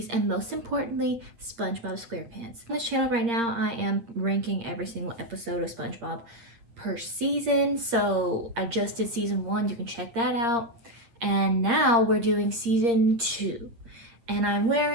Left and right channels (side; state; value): left; late; 8.6 ms